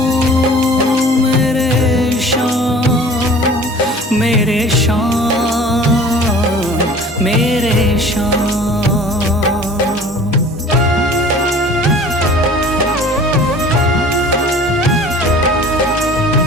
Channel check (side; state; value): both; normal; correlation 0.46